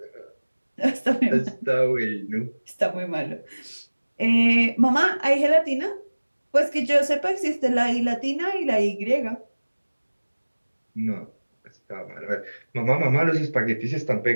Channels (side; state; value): both; inverted; correlation -1.00